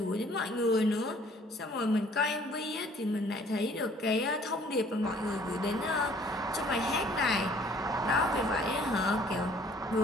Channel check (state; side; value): normal; both; correlation 0.57